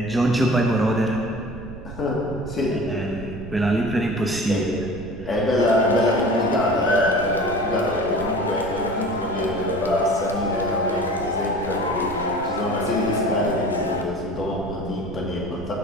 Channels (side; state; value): right; noise; rumble, 13 dB below the sound